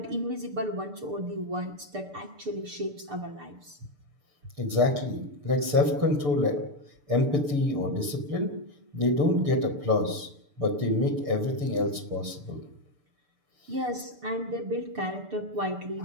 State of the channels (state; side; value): late; left; 6.8 ms